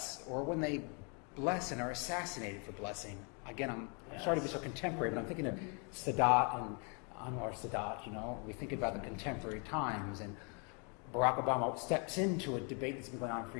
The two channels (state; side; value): quieter; right; 35.8 dB